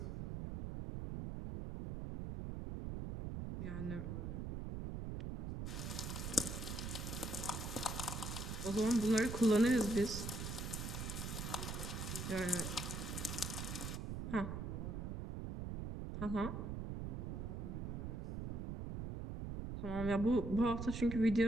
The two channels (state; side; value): noise; right; rumble, 4 dB below the sound